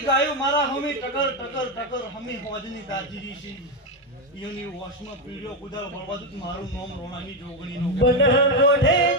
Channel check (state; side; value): normal; both; correlation 0.08